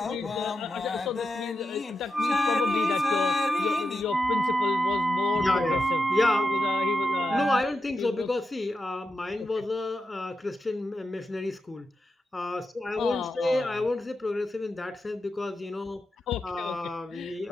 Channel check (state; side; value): normal; both; correlation 0.88